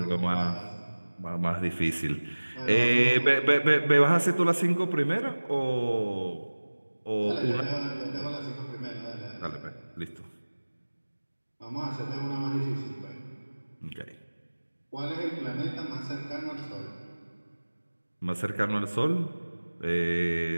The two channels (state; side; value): inverted; both; correlation -1.00